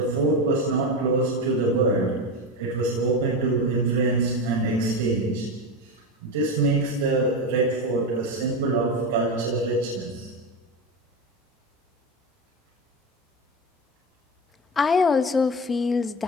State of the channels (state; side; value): normal; both; correlation 0.19